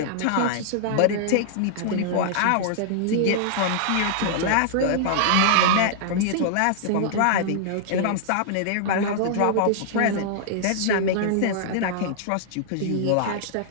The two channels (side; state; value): both; different; correlation -0.01